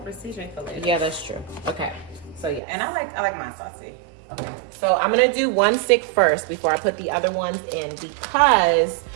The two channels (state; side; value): drops out; left; at 2.6 s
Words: precision for later. Yeah, that's true. Okay. So yeah. And I like mine saucy. Okay. So I'm gonna do 1 stick first before I put the other ones in, because